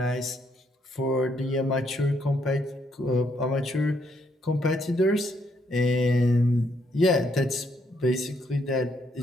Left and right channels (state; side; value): normal; both; correlation 0.73